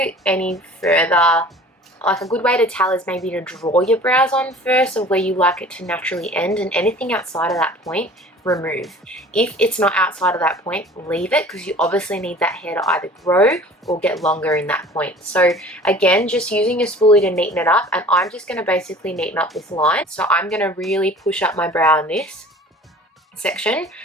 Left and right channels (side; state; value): both; normal; correlation 0.46